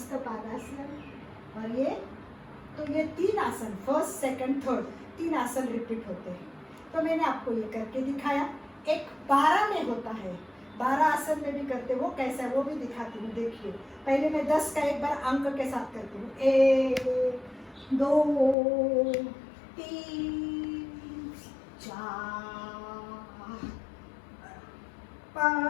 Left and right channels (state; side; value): drops out; right; at 18.6 s